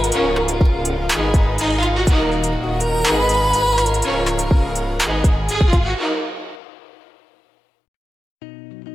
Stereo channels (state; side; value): drops out; right; at 6.6 s